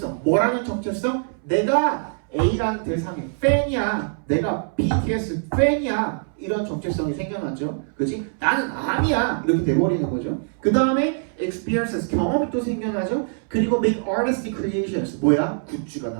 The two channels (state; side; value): silent; left; 63 dB below the other